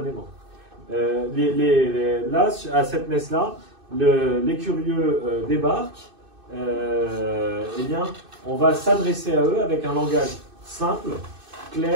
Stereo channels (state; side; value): late; left; 2.6 ms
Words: Là, à cette messe-là, les curieux débarquent. Eh bien, on va s'adresser à eux avec un langage simple,